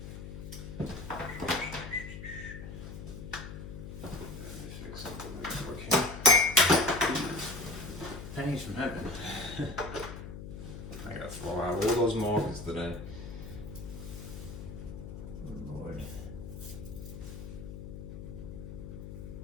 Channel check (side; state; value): left; noise; hum, 9 dB below the sound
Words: Pennies from heaven. I gotta throw out all those markers today. Oh Lord.